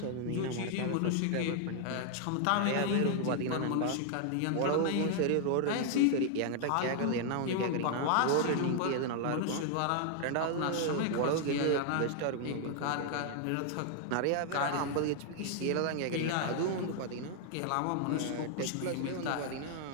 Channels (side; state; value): both; different; correlation 0.00